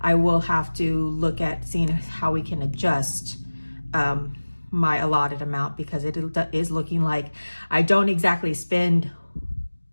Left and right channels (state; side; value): inverted; both; correlation -1.00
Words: will have to look at seeing how we can adjust my allotted amount, because it is looking like I don't exactly spend